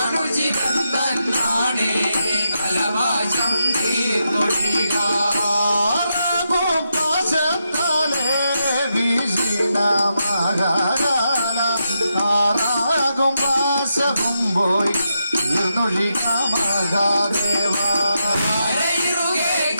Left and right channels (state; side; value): inverted; both; correlation -0.84